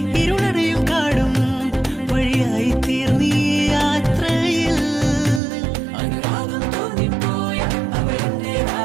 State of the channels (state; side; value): drops out; left; at 5.4 s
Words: ഇരുളടയും കാടും വഴിയായി തീർന്നീ യാത്രയിൽ അനുരാഗം തോന്നിപ്പോയ